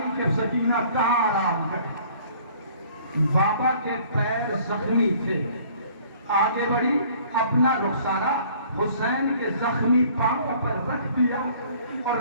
کہ سکینہ کہاں آرام کرے۔ بابا کے پیر زخمی تھے، آگے بڑھی، اپنا رخسارہ حسین کے زخمی پاؤں پر رکھ دیا اور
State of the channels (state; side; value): inverted; both; correlation -0.54